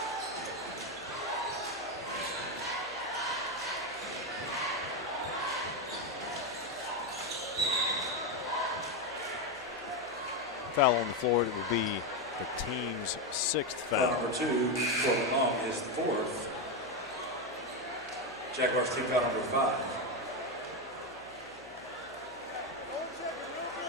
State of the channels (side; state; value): left; noise; hum, 27 dB below the sound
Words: foul on the floor. It will be the team's 6th foul. Number 2, Corbin Long, his 4th. Jaguars team foul number 5.